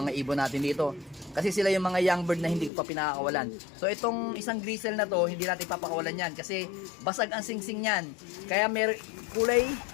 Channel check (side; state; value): right; drops out; at 2.7 s